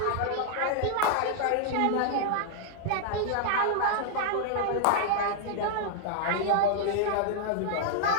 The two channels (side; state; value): both; different; correlation -0.01